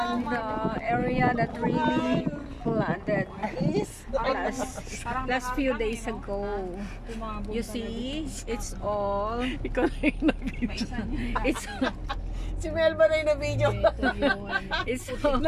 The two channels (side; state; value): both; identical; correlation 1.00